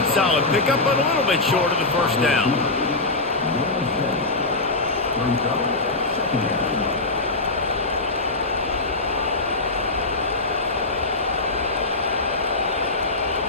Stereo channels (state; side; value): quieter; right; 3.2 dB